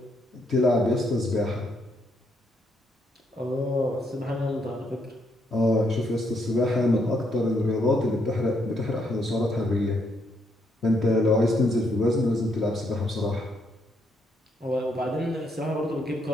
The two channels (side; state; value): both; normal; correlation 0.75